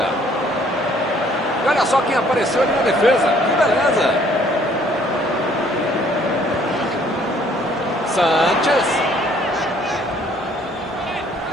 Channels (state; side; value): normal; both; correlation 0.61